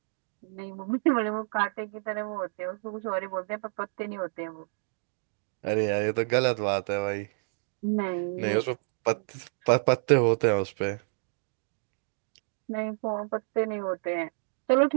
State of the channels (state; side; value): silent; left; digital silence